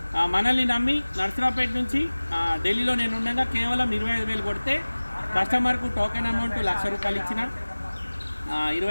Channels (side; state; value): both; inverted; correlation -1.00